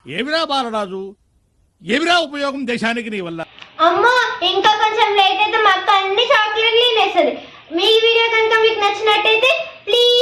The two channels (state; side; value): identical; both; correlation 1.00